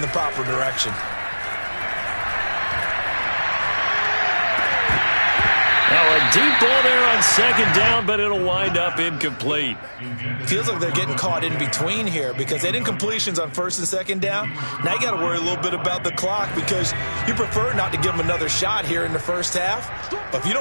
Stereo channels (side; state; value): both; inverted; correlation -1.00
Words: proper direction. Now a deep ball there on 2nd down, but it'll wind up incomplete. Feels like they're getting caught in between here because they had incompletions on 1st and 2nd down. Now you got to worry a little bit about the clock because you prefer not to give them another shot here in the first half. But if you